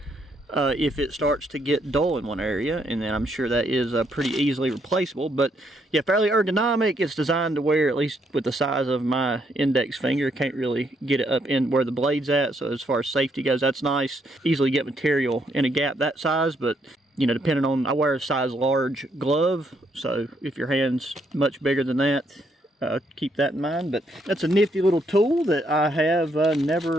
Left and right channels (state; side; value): normal; both; correlation 0.73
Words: If it starts to get dull in one area, and then I'm sure that is pretty easily replaceable. But yeah, fairly ergonomic. It's designed to where, at least with the size of my index finger, can't really get it up in where the blade's at. So as far as safety goes, that's nice. Easily get material in a gap that size, but you know, depending on, I wear a size large glove, so if your hand's much bigger than that, keep that in mind. But that's a nifty little tool that I have